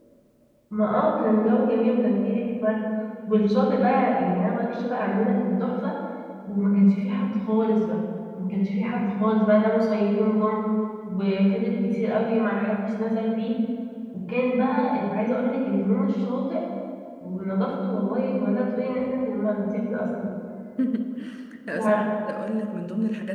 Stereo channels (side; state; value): both; identical; correlation 1.00